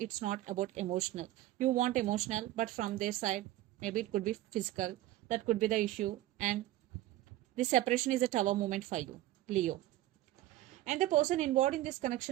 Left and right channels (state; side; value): quieter; left; 15.0 dB